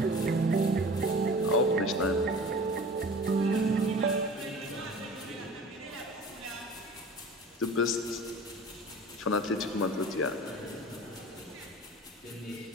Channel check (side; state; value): both; normal; correlation 0.40